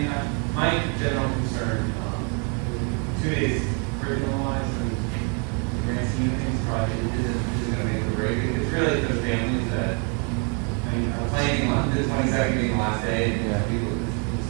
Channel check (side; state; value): left; quieter; 34.3 dB